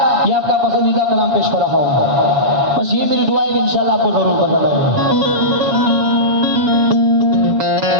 ये आपका पसंदीदा कलाम पेश कर रहा हूँ। बस ये मेरी दुआ है कि इंशाल्लाह आपको जरूर पसंद आएगा।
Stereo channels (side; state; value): left; late; 7.2 ms